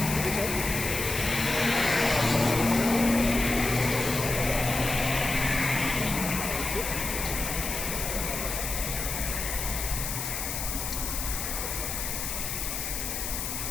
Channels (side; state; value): left; noise; hiss, 3 dB below the sound